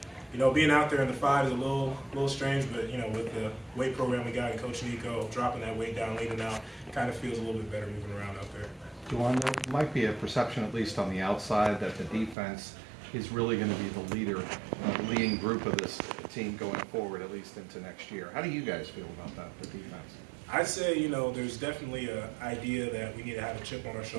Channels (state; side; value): drops out; left; at 12.4 s